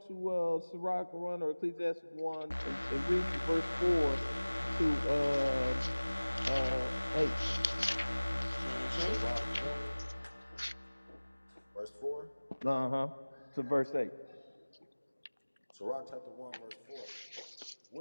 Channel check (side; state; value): both; inverted; correlation -1.00